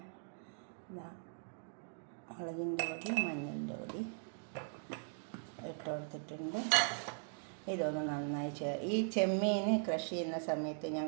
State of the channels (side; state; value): left; silent; digital silence